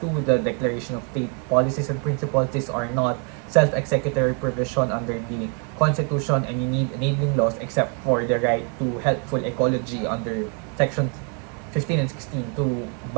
2, the Declaration of State Policies and Principles, these are not self-executory provision under the Constitution, and you need enabling laws except for the right to healthful ecology under Section 15 and 16 to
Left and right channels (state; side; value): quieter; left; 38.1 dB